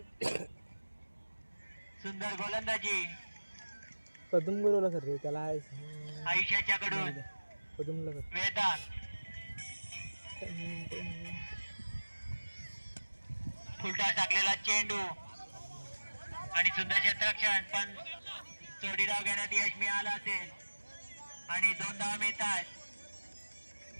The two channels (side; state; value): both; inverted; correlation -1.00